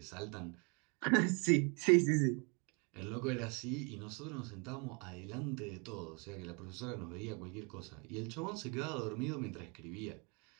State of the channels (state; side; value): quieter; left; 33.7 dB